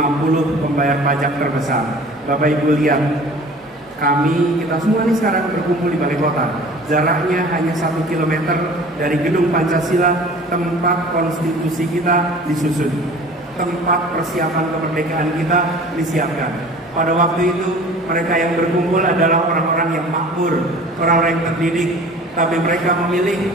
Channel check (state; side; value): normal; both; correlation 0.44